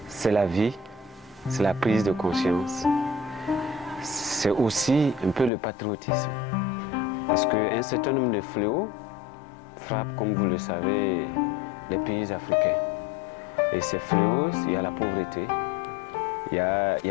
c'est la vie, c'est la prise de conscience. C'est aussi un peu le patriotisme. Parce qu'un certain nombre de fléaux frappent, comme vous le savez, les pays africains. Et ces fléaux, il y a la pauvreté, il y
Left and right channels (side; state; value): right; drops out; at 5.5 s